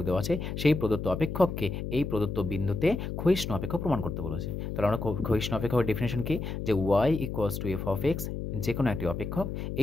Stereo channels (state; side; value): noise; left; hum, 5 dB below the sound